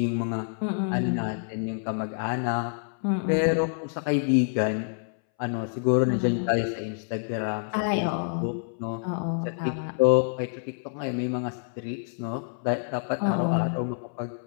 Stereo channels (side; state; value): right; silent; 60 dB below the other